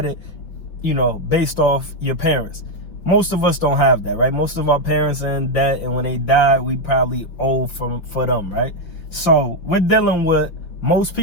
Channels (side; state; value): right; late; 5.8 ms